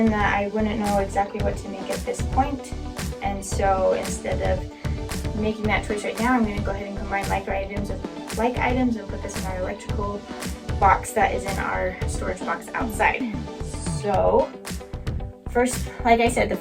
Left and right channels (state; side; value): identical; both; correlation 1.00